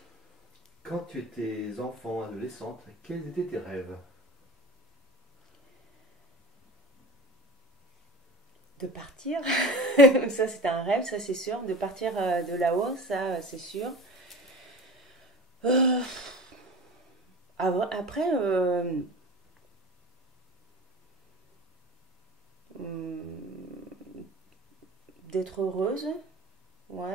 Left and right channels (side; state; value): both; normal; correlation 0.35